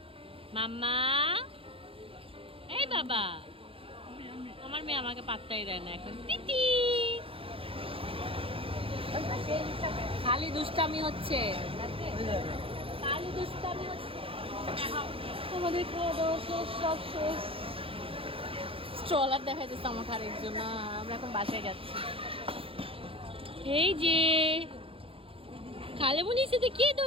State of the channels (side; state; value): left; late; 0.27 ms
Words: মাম্মা, এই বাবা। আমার মেয়ে আমাকে পাত্তাই দেয় না এখন। তিতি খালি দুষ্টামি হচ্ছে, খালি দুষ্টামি হচ্ছে। আমাদের খাওয়া দাওয়া শেষ, সব শেষ। স্ট্রলার দেখাইতেছে আমাকে আরেকজন। না, আমরা এখন বাসায় যাচ্ছি। এই যে খালেমনির সাথে কে